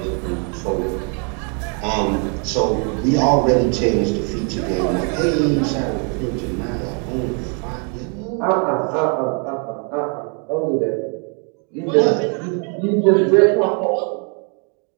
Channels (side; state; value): left; quieter; 38.5 dB